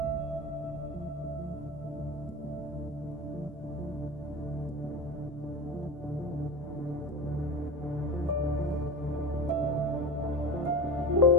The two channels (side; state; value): both; normal; correlation 0.26